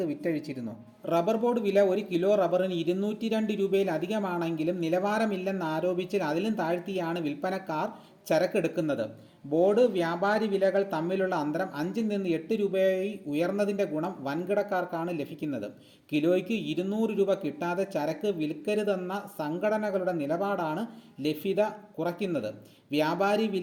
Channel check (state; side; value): identical; both; correlation 1.00